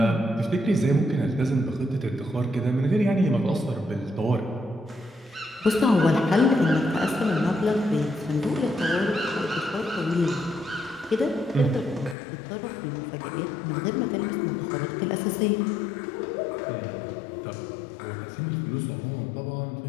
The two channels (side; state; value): right; drops out; at 12.2 s